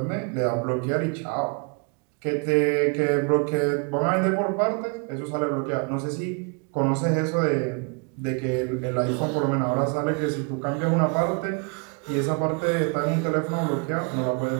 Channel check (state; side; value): quieter; left; 35.1 dB